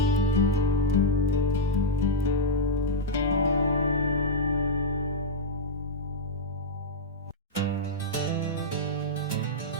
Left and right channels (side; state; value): both; normal; correlation -0.04